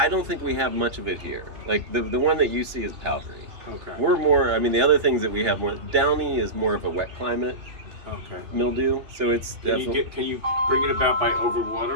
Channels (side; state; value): left; late; 2.9 ms